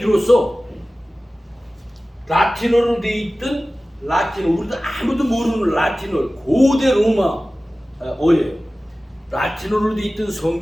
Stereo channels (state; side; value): normal; both; correlation 0.96